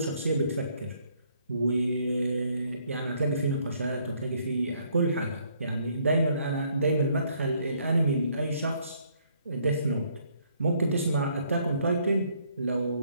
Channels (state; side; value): inverted; both; correlation -0.67